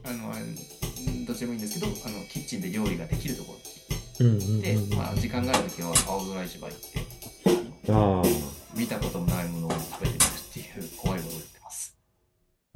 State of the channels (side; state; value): both; identical; correlation 1.00